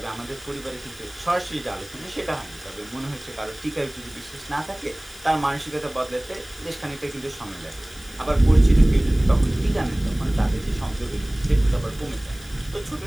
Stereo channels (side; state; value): left; noise; hiss, 20 dB below the sound